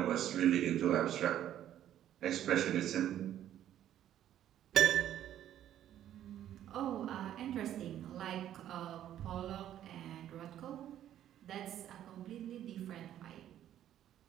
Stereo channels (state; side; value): quieter; left; 11.4 dB